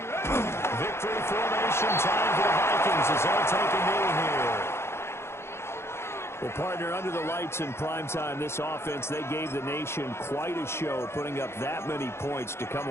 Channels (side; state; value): right; late; 0.12 ms